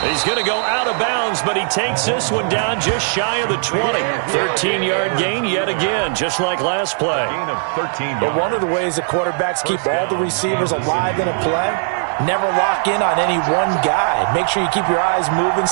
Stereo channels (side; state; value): left; silent; digital silence